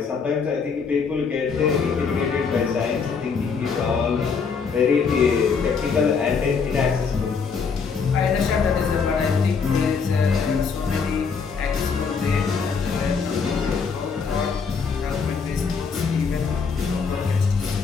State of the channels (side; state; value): right; quieter; 5.6 dB